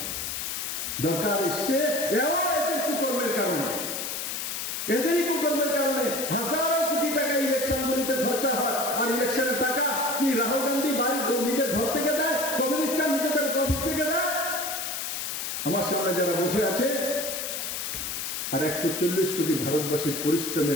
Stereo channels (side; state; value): left; noise; hiss, 4 dB below the sound